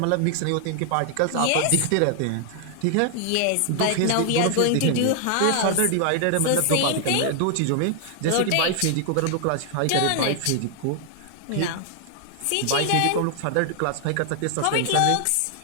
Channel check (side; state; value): both; different; correlation 0.00